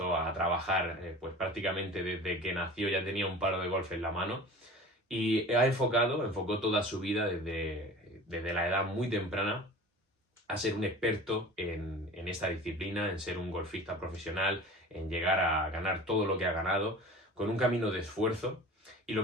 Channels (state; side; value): normal; both; correlation 0.39